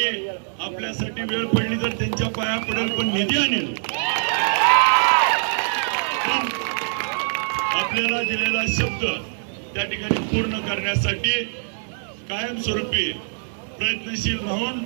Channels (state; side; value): silent; left; digital silence